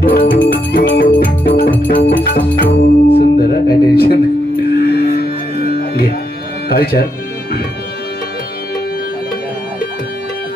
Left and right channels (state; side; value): normal; both; correlation 0.80